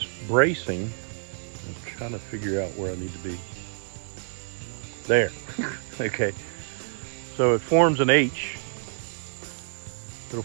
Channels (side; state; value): left; silent; 59 dB below the other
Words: bracing, I'm trying to figure out where I need to be. There. Okay. So it forms an H. It'll